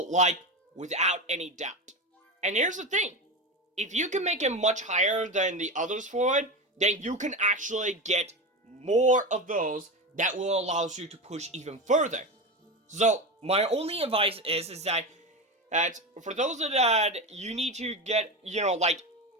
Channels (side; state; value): both; normal; correlation 0.21